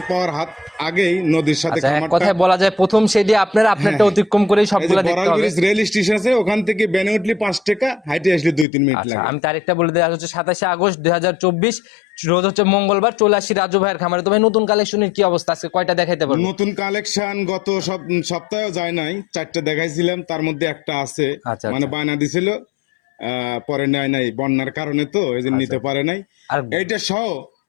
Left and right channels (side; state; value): right; drops out; at 8.7 s